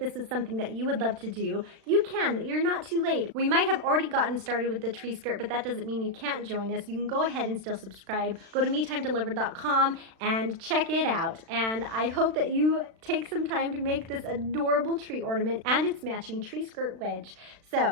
is something that you would love to do, you can. You're not too late. We might have already gotten started with the tree skirt, but that doesn't mean you can't join us. You can go ahead and still subscribe. Go to MeTimeDelivered.com and check it out. And I hope that you take some time to make this adorable tree ornament and its matching tree skirt wedge.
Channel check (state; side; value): late; left; 36 ms